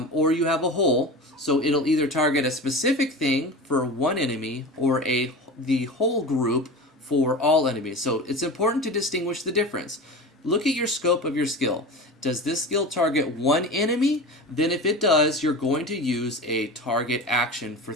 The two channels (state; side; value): normal; both; correlation 0.30